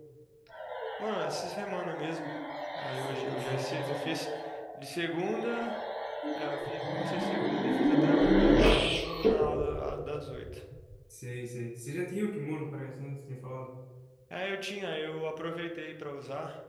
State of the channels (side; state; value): both; identical; correlation 1.00